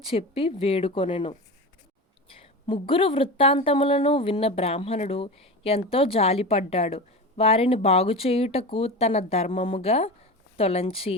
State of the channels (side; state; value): both; normal; correlation 0.26